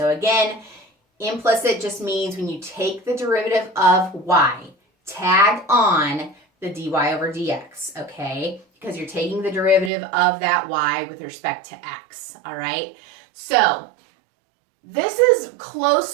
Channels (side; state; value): left; drops out; at 9.9 s